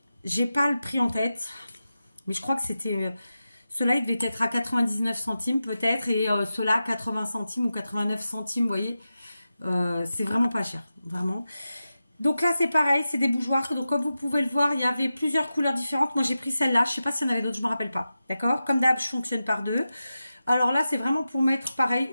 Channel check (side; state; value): both; inverted; correlation -0.92